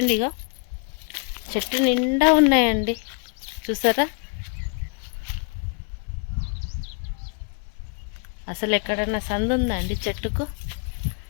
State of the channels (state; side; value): quieter; right; 38.9 dB